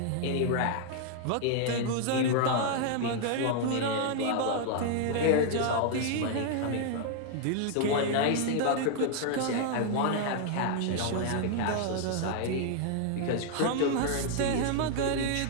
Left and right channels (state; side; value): different; both; correlation -0.01